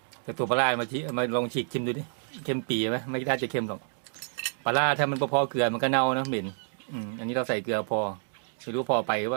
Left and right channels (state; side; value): silent; left; digital silence